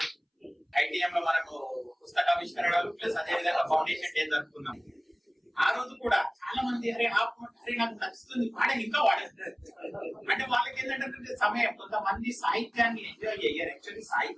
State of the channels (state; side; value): identical; both; correlation 1.00